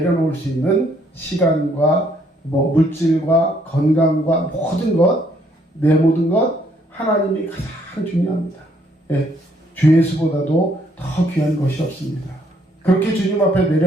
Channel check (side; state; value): both; normal; correlation 0.68